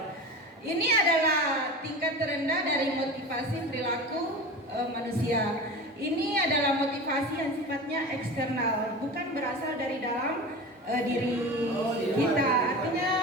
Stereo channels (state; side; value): normal; both; correlation 0.31